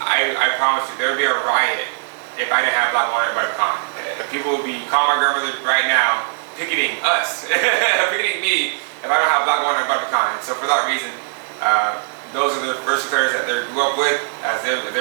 I promise you, there would be a riot if I didn't have black walnut or butter pecan. People would be calling my grandmother right now, picketing us, picketing me if I don't have black walnut or butter pecan. So for that reason, those are the first flavors that they grew up with as they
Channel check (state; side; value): silent; left; 63 dB below the other